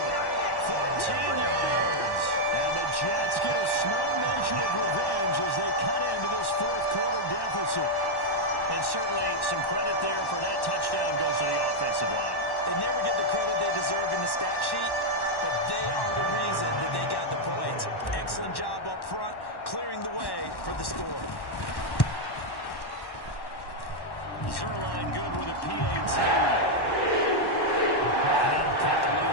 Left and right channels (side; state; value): right; late; 1.1 ms